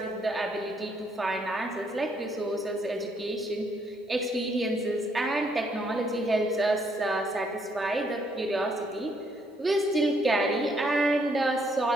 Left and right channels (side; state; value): both; normal; correlation 0.71